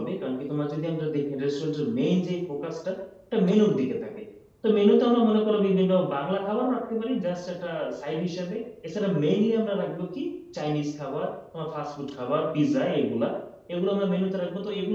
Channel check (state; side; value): identical; both; correlation 1.00